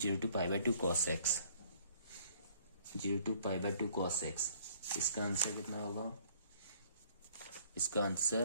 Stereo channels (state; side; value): inverted; both; correlation -0.58